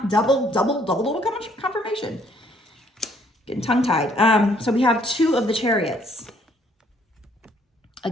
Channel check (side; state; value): both; normal; correlation 0.64